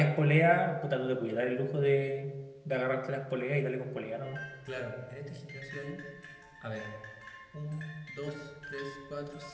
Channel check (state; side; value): identical; both; correlation 1.00